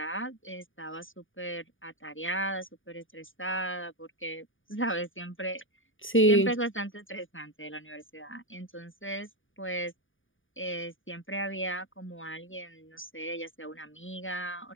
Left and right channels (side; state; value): right; late; 0.57 ms